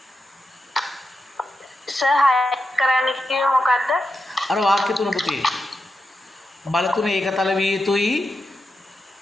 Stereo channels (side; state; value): both; normal; correlation 0.87